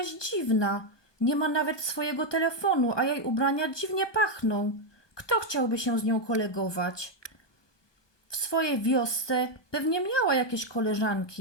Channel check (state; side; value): late; right; 1.2 ms